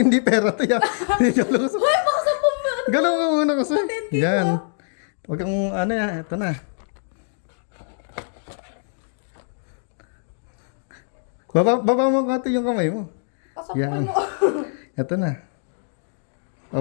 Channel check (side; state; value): right; silent; 63 dB below the other